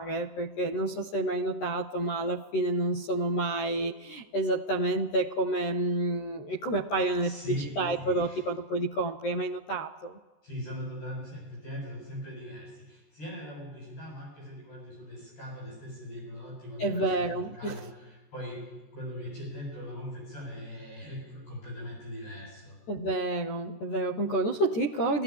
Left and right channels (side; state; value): right; late; 14 ms